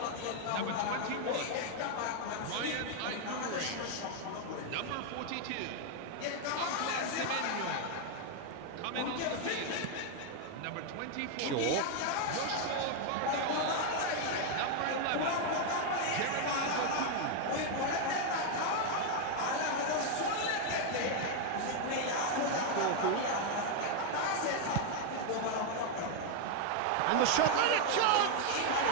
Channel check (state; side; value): different; both; correlation 0.00